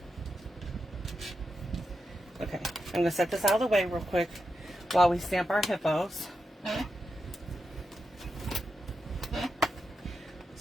Okay, I'm going to set this out of the way real quick while we stamp our hippos.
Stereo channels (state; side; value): normal; both; correlation 0.87